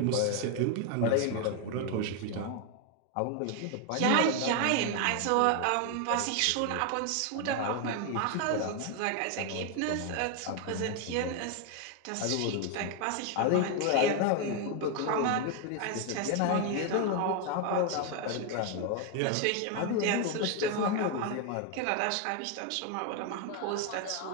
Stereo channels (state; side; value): different; both; correlation 0.01